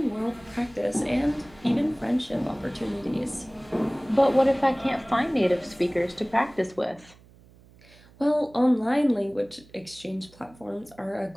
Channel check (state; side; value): noise; right; hum, 25 dB below the sound